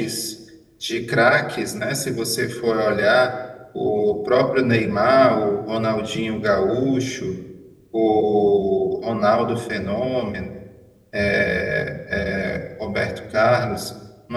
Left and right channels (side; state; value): both; identical; correlation 1.00